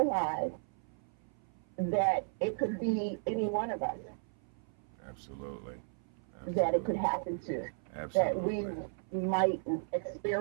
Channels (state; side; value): silent; left; 54 dB below the other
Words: that it could be any one of us Absolutely. that it could happen to. Absolutely. That we might